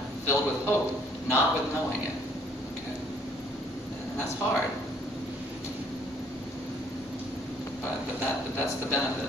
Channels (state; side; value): normal; both; correlation 0.62